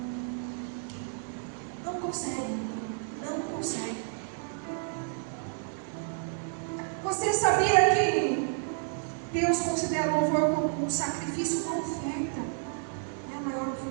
Não consegue. Não consegue. Você sabia que Deus considera o louvor como um sacrifício, uma oferta? É a maior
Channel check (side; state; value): left; silent; 57 dB below the other